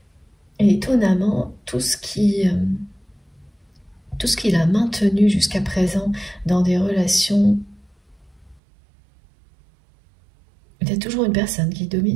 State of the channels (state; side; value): drops out; left; at 8.6 s